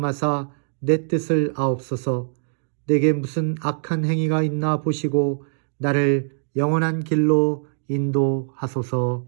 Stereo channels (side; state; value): left; silent; digital silence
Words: 내 뜻을 아옵소서. 내게 무슨 악한 행위가 있나 보시고 나를 영원한 길로 인도하소서.